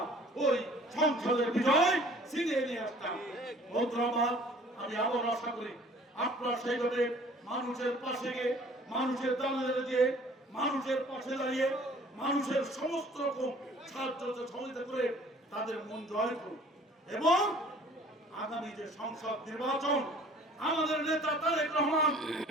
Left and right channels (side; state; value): both; normal; correlation 0.52